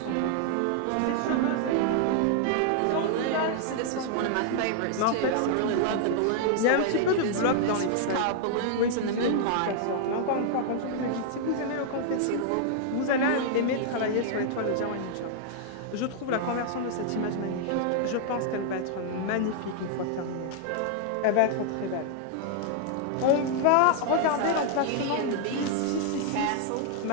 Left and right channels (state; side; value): different; both; correlation 0.00